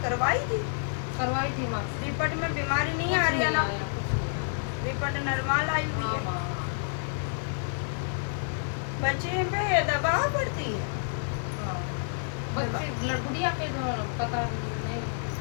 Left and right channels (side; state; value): right; silent; digital silence